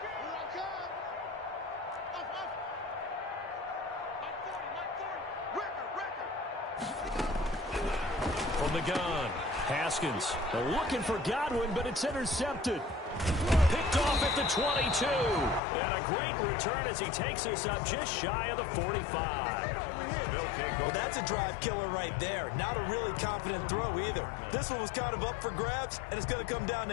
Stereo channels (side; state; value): right; drops out; at 15.6 s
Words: From the gun, Haskins looking for Godwin, but it's intercepted. Picked off at the 22. And a great return as he takes us up just shy of the 45. Well, that's a drive killer right there. Not a really confident throw either. This one was kind of up for grabs, and it's going to come down